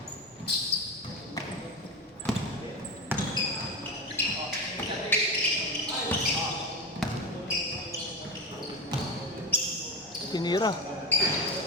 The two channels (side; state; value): both; normal; correlation 0.21